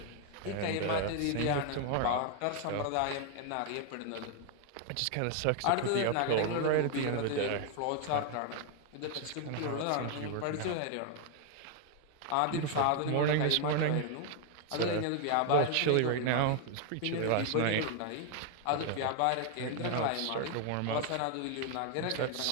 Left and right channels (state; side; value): different; both; correlation 0.00